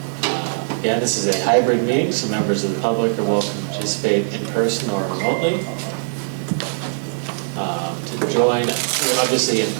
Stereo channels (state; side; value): silent; left; 65 dB below the other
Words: Again, this is a hybrid meeting, so members of the public are welcome to participate in person or remotely. To join, obviously in